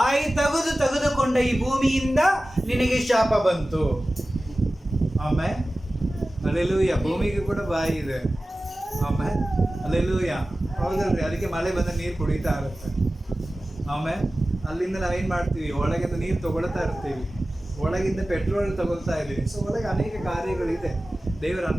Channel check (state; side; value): normal; both; correlation 0.96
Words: ತೆಗೆದುಕೊಂಡ ಈ ಭೂಮಿಯಿಂದ ನಿನಗೆ ಶಾಪ ಬಂತು. ಆಮೇಲೆ ಅಲ್ಲೆಲೂಯ, ಭೂಮಿಗೆ ಕೂಡ ಬಾಯಿ ಇದೆ. ಆಮೇಲೆ ಅಲ್ಲೆಲೂಯ, ಹೌದಲ್ರಿ? ಅದಕ್ಕೆ ಮಳೆ ಬಂದ ನೀರು ಕುಡಿತಾ ಇರುತ್ತೆ. ಆಮೇಲೆ ಅಲ್ಲಿಂದ ನಾವೇನ್ ಮಾಡ್ತೀವಿ? ಒಳಗಿಂದ ನೀರು ತಗೊಳ್ತಾ ಇರ್ತೀವಿ, ಒಳಗಿಂದ ಪೆಟ್ರೋಲ್ ತಗೊಳ್ತಾ ಇದ್ದೀವಿ. ಸೊ ಒಳಗೆ ಅನೇಕ ಕಾರ್ಯಗಳಿದೆ. ದೇವರು